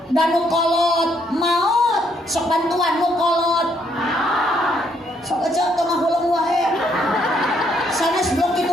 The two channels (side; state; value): both; normal; correlation 0.71